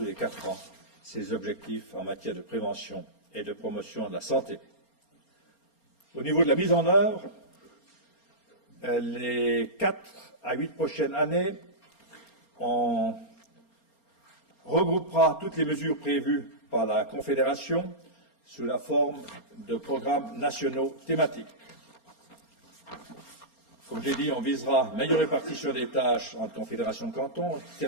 les 4 ans ses objectifs en matière de prévention et de promotion de la santé. Au niveau de la mise en œuvre, les 4 à 8 prochaines années, on regroupera toutes les mesures prévues par la Confédération sous la forme de programmes nationaux thématiques. Comme j'ai dit, on visera une meilleure répartition des tâches entre Confédération et cantons.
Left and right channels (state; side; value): late; right; 4.3 ms